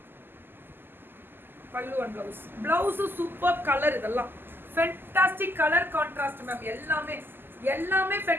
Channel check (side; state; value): left; late; 0.097 ms